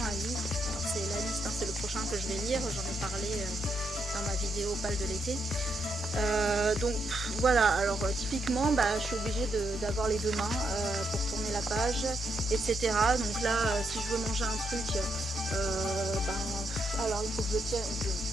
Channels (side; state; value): both; normal; correlation 0.79